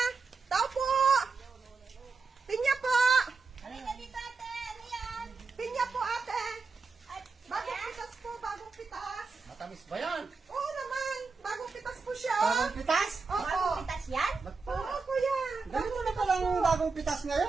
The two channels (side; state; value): left; quieter; 4.5 dB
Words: Tao po! Pinya po! Halika dito, ate. Ano yan? Pinya po, ate! At, Bagong pitas po, bagong pitas. Matamis ba yan? Oo naman, bagong pitas po siya. Bagong pitas? Opo. bagong pitas yan? Oo, kuya. Ganito na palang bagong pitas